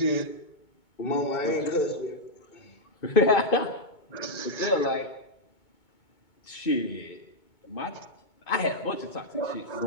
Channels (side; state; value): right; late; 2.2 ms